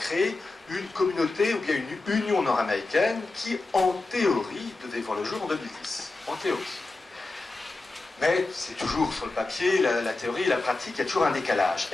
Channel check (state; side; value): quieter; right; 3.3 dB